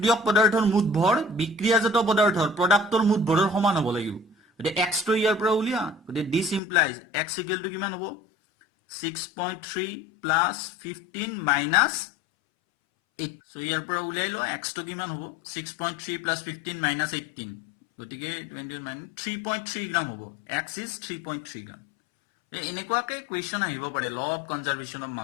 পদাৰ্থৰ মুঠ ভৰ বিক্ৰিয়াজাত পদাৰ্থৰ প্ৰডাক্টৰ মুঠ ভৰৰ সমান হ'ব লাগিব গতে x টো ইয়াৰ পৰা উলিয়া গতে this implies x equal to কিমান হ'ব 6.3 প্লাস 15 মাইনাস 8 সো ইয়াৰ পৰা উলিয়াই লো x টো কিমান হ'ব 6.3 প্লাস 15 মাইনাস 18 গতিকে 20 মাইনাস 3.3 গ্ৰাম হ'ব x is 3.3 গ্ৰাম এনেকুৱাকে কোৱেশ্চন আহিব পাৰে ল অফ কনজাৰভেশ্যন অফ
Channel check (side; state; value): right; drops out; at 6.6 s